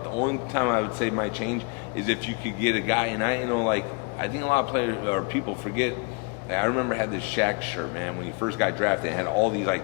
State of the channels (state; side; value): quieter; right; 32.6 dB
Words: The only time I would say might change is if you could get a guy, and I think a lot of players or people forget. Like, I remember I had this Shaq shirt, man, when he first got drafted. It had all these